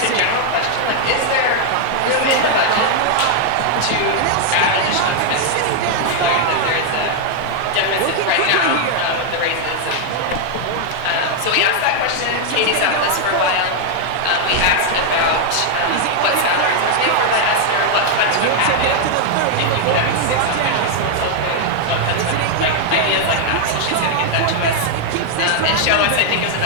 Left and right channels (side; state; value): both; different; correlation 0.00